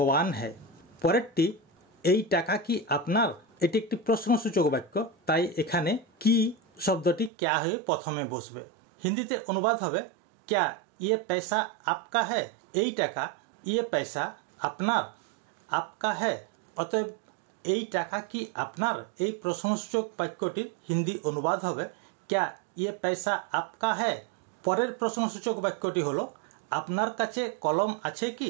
है। परेरटी एई टाका कि आपनार एटी एकटी प्रश्नसूचक वाक्य ताई एखाने कि शब्दटी क्या हये प्रथमे बसबे। हिंदीते अनुवाद हबे क्या ये पैसा आपका है। एई टाका ये पैसा आपनार आपका है। अतएव एई टाका कि आपनार एई प्रश्नसूचक वाक्यटिर हिंदी अनुवाद हबे क्या ये पैसा आपका है। परेर प्रश्नसूचक वाक्यटी हलो आपनार काछे कलम आछे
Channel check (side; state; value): left; drops out; at 7.3 s